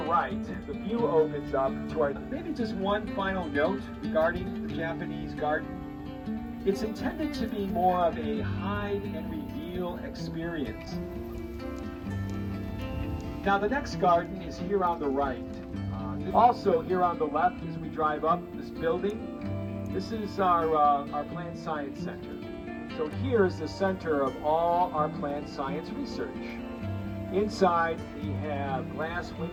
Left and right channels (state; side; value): identical; both; correlation 1.00